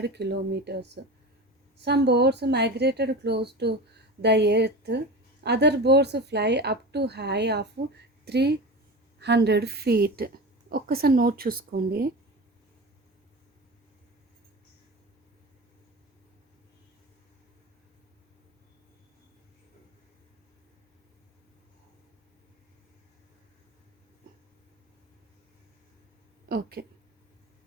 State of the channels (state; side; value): normal; both; correlation 0.29